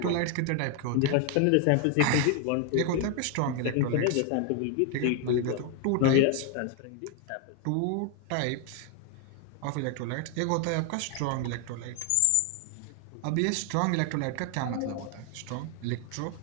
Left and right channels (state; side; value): different; both; correlation 0.00